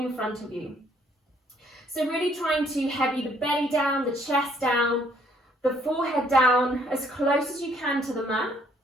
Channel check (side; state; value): both; normal; correlation 0.66